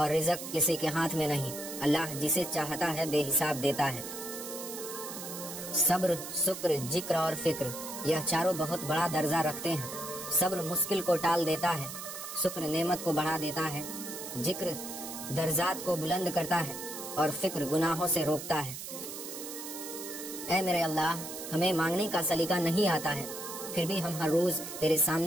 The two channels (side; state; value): right; noise; hiss, 9 dB below the sound